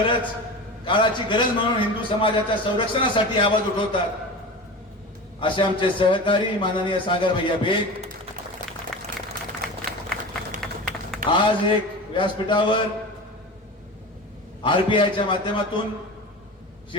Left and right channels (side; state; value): both; normal; correlation 0.30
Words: काळाची गरज म्हणून हिंदू समाजाच्या संरक्षणासाठी आवाज उठवतात असे आमचे सहकारी माननीय सागर भैया बेग, आज एक व्यासपीठावर आरपीआयच्या माध्यमातून